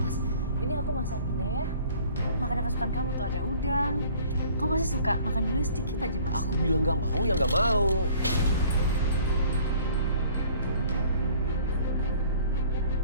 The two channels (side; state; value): both; inverted; correlation -0.53